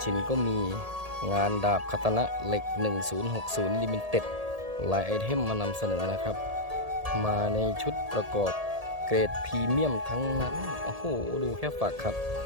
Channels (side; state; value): left; late; 1.7 ms